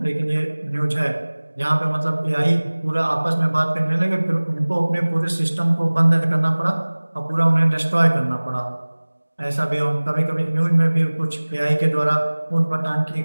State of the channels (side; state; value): both; inverted; correlation -1.00